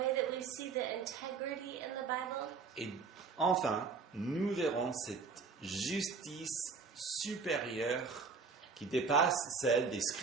that we see the integrity in the Bible. et enfin nous verrons cette justice supérieure qui dépasse celle des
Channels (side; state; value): left; quieter; 5.0 dB